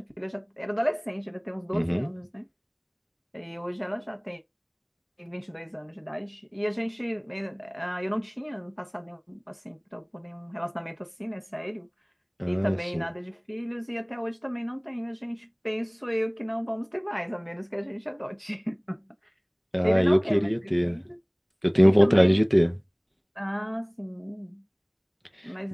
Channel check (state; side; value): identical; both; correlation 1.00